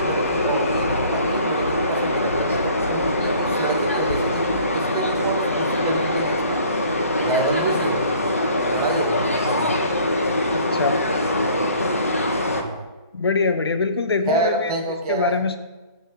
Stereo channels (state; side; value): inverted; both; correlation -0.51